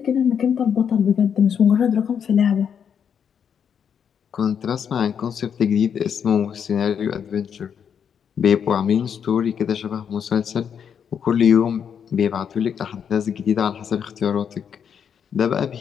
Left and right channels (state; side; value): quieter; right; 7.7 dB